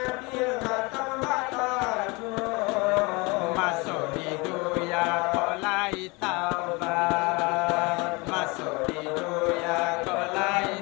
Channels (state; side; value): quieter; right; 26.6 dB